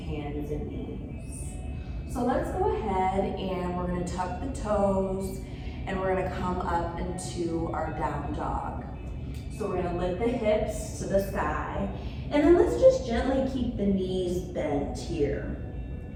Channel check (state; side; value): identical; both; correlation 1.00